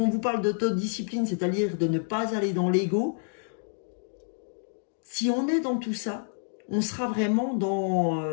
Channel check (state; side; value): silent; right; digital silence